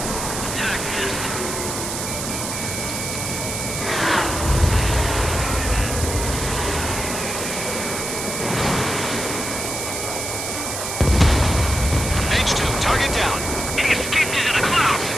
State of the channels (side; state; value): right; noise; hiss, 4 dB below the sound